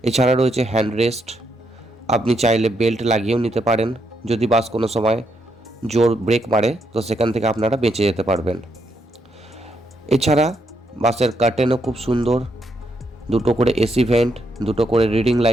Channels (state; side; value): normal; both; correlation 0.78